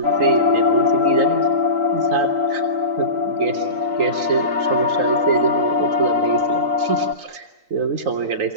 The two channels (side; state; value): left; late; 3.9 ms